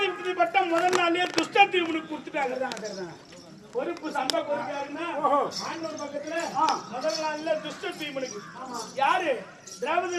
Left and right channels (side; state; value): both; identical; correlation 1.00